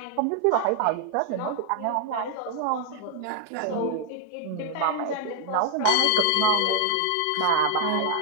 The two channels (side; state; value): both; different; correlation 0.00